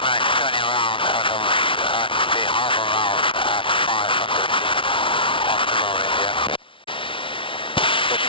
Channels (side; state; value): right; late; 0.25 ms